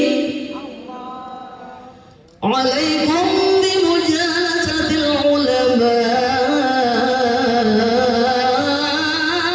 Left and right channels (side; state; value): both; identical; correlation 1.00